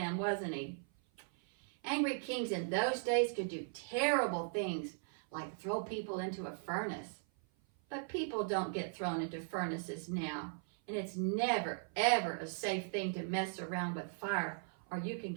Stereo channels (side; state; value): left; silent; 52 dB below the other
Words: wasn't he? Angry kings in those days could do terrible things, like throw people into a furnace. But people don't get thrown into furnaces now, and it's never, ever a safe thing to mess around with fire, or you can